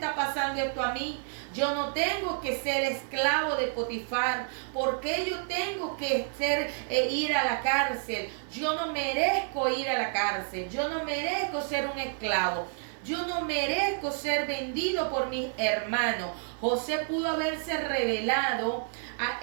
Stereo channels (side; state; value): left; silent; 58 dB below the other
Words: pasando esto a mí? Yo no tengo que ser esclavo de Potifar. ¿Por qué yo tengo que ir a la cárcel? Yo no merezco ir a la cárcel. Yo no merezco ser un esclavo. Yo no merezco ser vendido por mis hermanos. José pudo haberse revelado